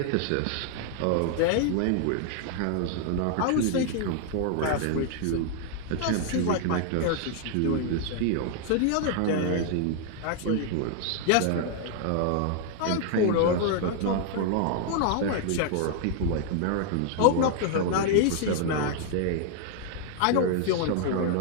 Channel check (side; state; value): both; different; correlation 0.00